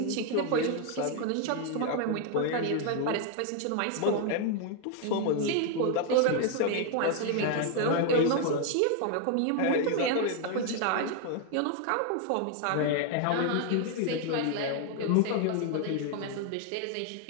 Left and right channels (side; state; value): both; different; correlation 0.00